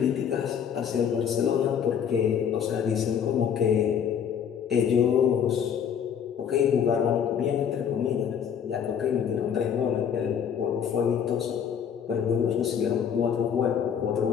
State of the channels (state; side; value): quieter; right; 8.0 dB